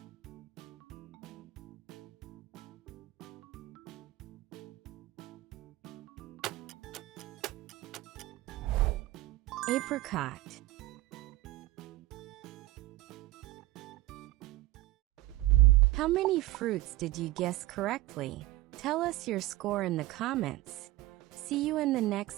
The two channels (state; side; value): quieter; left; 17.5 dB